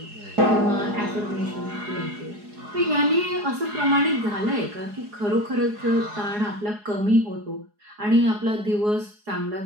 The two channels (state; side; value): late; left; 4.8 ms